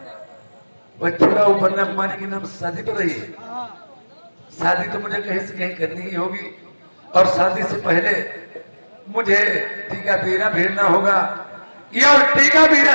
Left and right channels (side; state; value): both; inverted; correlation -1.00